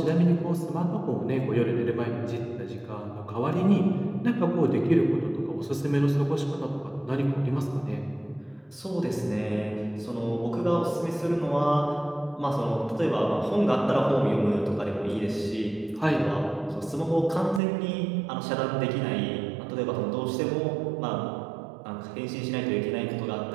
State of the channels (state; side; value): drops out; left; at 17.6 s